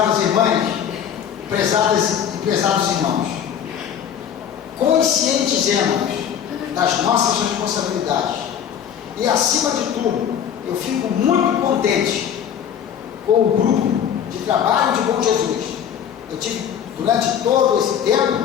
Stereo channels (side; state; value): right; quieter; 8.8 dB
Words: irmãs, prezados irmãos, conscientizemos das nossas responsabilidades. E acima de tudo, eu fico muito contente com o grupo de trabalho de Bom Jesus. Eu tive, durante todo esse